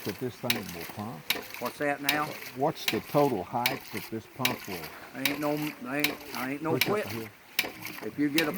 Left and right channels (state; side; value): identical; both; correlation 1.00